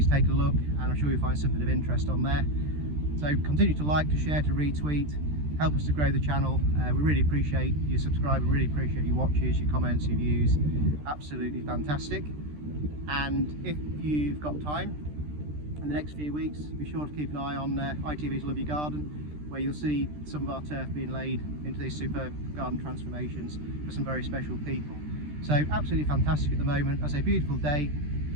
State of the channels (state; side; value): late; left; 13 ms